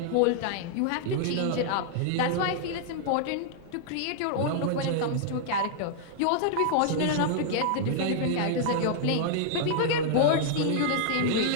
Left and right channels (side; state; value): both; different; correlation -0.01